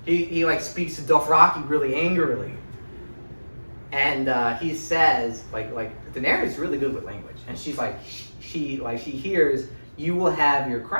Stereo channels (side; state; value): both; inverted; correlation -1.00